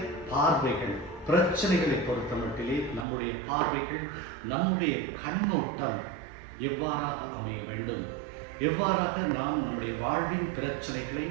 பார்வைகள், பிரச்சனைகளை பொறுத்த மட்டிலே நம்முடைய பார்வைகள், நம்முடைய கண்ணோட்டம் எவ்வாறாக அமைய வேண்டும், எவ்வாறாக நாம் நம்முடைய வாழ்வின் பிரச்சனைகளை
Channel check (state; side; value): drops out; left; at 3.1 s